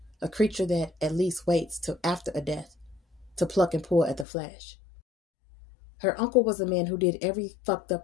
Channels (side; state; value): right; drops out; at 4.2 s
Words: a creature that at least waits till after a death to pluck and pull at the flesh. Her uncle was a man who did every fucked